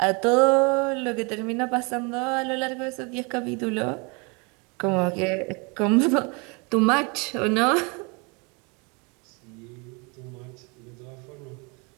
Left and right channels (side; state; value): left; quieter; 31.0 dB